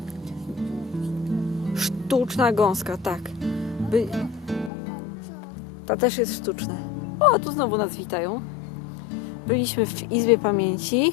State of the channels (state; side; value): drops out; right; at 4.7 s